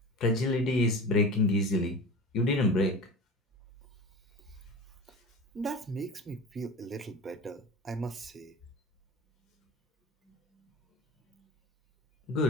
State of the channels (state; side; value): normal; both; correlation 0.32